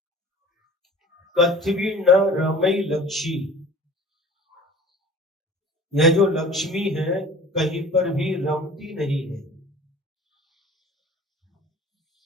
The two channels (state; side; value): normal; both; correlation 0.44